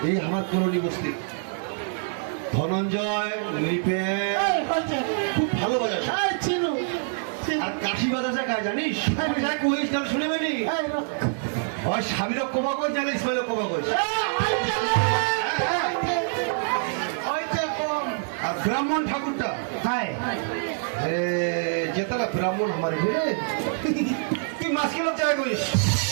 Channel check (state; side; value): silent; left; digital silence